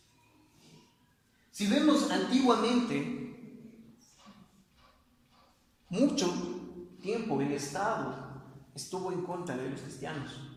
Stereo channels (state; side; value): identical; both; correlation 1.00